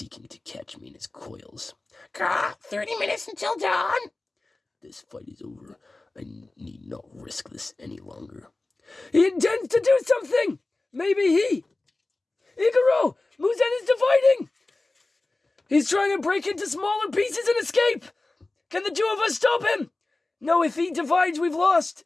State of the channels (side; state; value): right; quieter; 3.1 dB